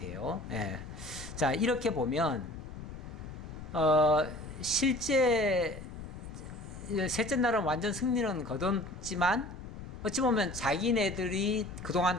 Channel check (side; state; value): left; noise; rumble, 12 dB below the sound